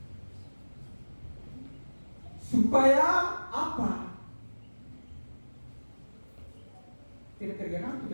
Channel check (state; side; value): inverted; both; correlation -1.00